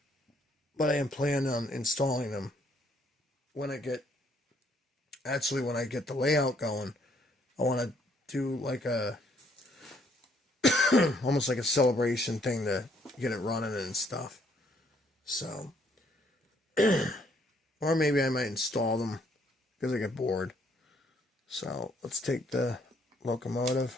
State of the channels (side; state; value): both; normal; correlation 0.67